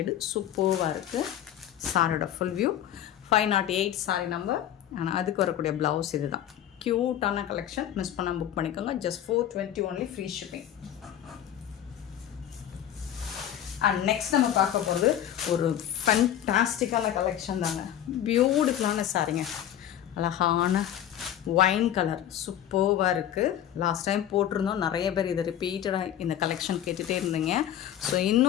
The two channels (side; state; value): right; quieter; 11.0 dB